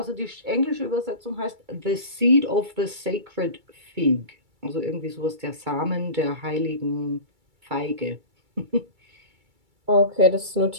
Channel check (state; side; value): late; left; 2.3 ms